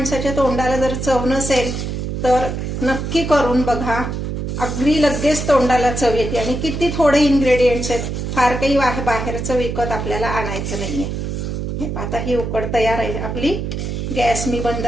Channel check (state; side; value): noise; right; hum, 4 dB below the sound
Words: तोंडाला जर चव नसेल तर नक्की करून बघा. अगदी लगेच तोंडाला चव येते आणि किती थोडे इन्ग्रेडियंट्स आहेत. फार काही बाहेरचं विकत आपल्याला आणायचं नाहीये. हे आता ही उकड तयार आहे आपली. गॅस मी बंद